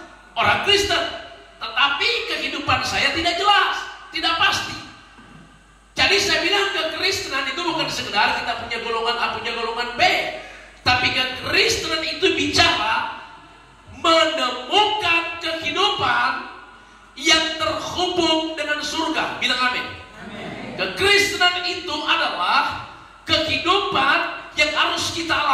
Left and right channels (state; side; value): identical; both; correlation 1.00